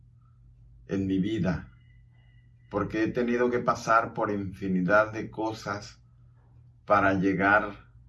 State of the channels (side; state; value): both; identical; correlation 1.00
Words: en mi vida, porque he tenido que pasar por infinidad de cosas para llegar